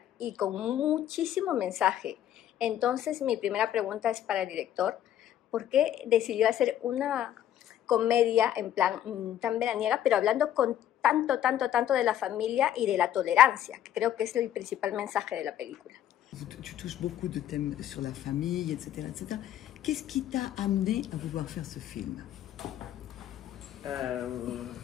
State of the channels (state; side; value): quieter; right; 11.3 dB